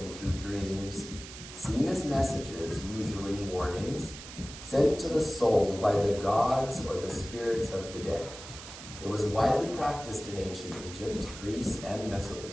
through dreams, seen as messages, usually warnings, sent to the soul by the gods or the spirits of the dead. It was widely practiced in ancient Egypt, Greece, and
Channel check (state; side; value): noise; right; hiss, 13 dB below the sound